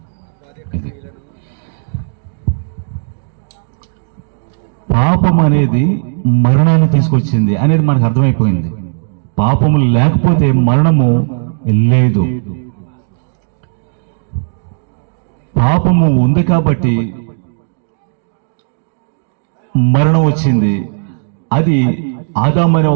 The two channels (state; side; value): silent; left; 65 dB below the other